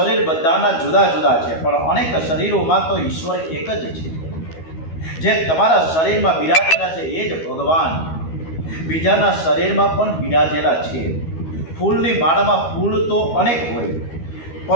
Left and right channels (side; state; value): right; late; 12 ms